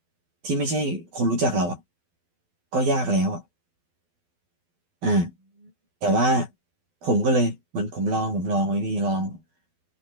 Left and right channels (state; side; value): late; left; 12 ms